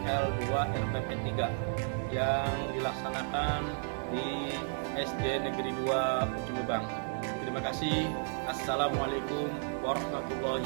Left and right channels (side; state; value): left; silent; digital silence